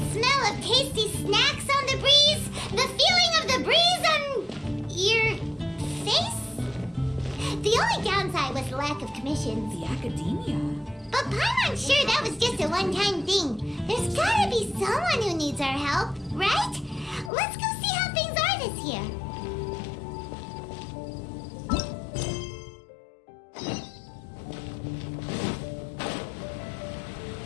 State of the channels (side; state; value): right; drops out; at 17.3 s